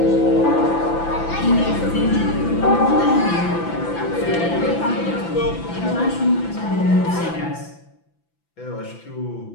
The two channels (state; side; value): late; right; 5.9 ms